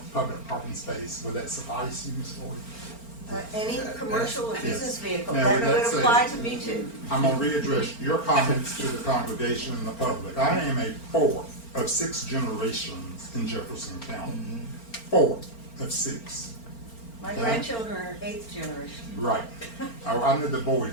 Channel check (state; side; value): late; right; 4.4 ms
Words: public parking space. Would that suffice you, Ms. Floyd? Any commercial or business vehicle, Now, that with would that apply said, to me too. I'm gonna readdress your comments to the congregation and the public. I am a 4th of 6 generations in Jefferson County. 4th of 6. My grandchildren are 8th generation. Right. I know the